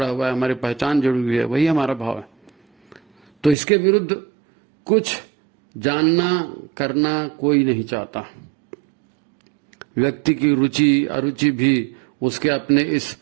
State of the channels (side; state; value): left; drops out; at 3.6 s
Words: हुआ है, हमारी पहचान जुड़ी हुई है, वही हमारा भाव है। तो इसके विरुद्ध कुछ जानना करना कोई नहीं चाहता। व्यक्ति की रुचि अरुचि भी उसके अपने इस